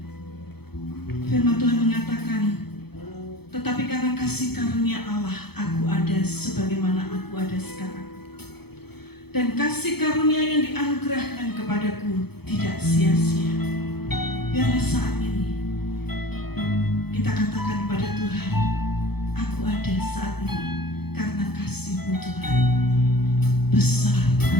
Firman Tuhan mengatakan, tetapi karena kasih karunia Allah, aku ada sebagaimana aku ada sekarang. Dan kasih karunia yang dianugerahkan kepadaku tidak sia-sia. Biarlah saat ini kita katakan kepada Tuhan, aku ada saat ini karena kasih-Mu Tuhan. Besar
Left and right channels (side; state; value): right; late; 0.97 ms